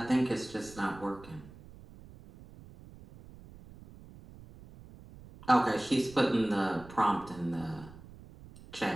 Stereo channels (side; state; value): right; noise; rumble, 19 dB below the sound